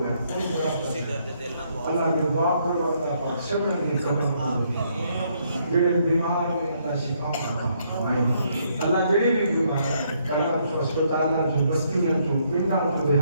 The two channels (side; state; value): both; inverted; correlation -0.71